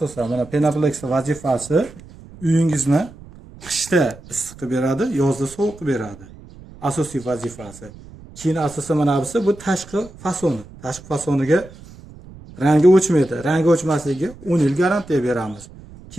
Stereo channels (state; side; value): noise; right; rumble, 19 dB below the sound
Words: mana Penaplex vazifasi uyingizni qishda issiq qilib beradi, yozda sovuq qilib beradi. Asosiy vazifasi. Keyin asosan mana bu tashqi fasoni. Tashqi fasoniga rangi o'chmaydi. Rangi o'chmasligiga 10 yil garantiya beramiz.